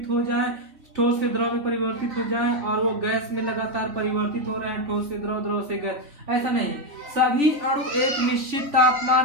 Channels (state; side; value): late; left; 3.4 ms